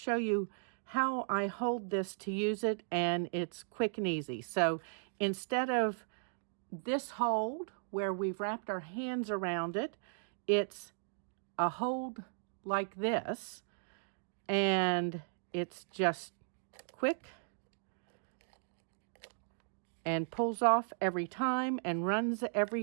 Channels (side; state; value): left; silent; digital silence